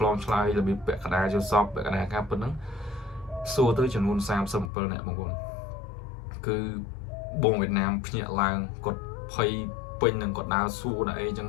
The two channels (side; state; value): right; drops out; at 4.7 s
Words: លងឆ្លើយរបៀបពាក់កណ្ដាលចូលសពពាក់កណ្ដាលការពិតហ្នឹងសួរទៅចំនួន37នាក់បងប្អូនគឺបងវៀតណាមភ្ញាក់ឡើងគាត់ភ័យពេញនឹងគាត់ដើរសួរដល់អីចឹង